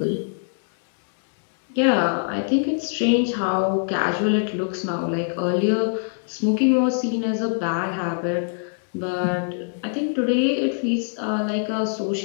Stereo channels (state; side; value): silent; right; 63 dB below the other